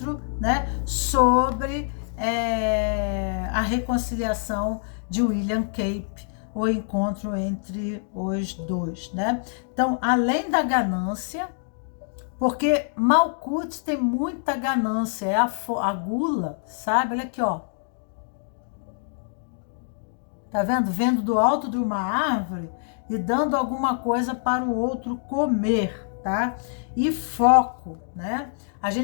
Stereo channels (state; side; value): silent; right; digital silence